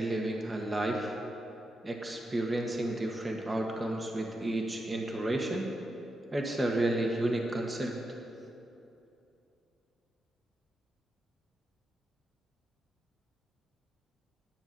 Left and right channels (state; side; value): normal; both; correlation 0.86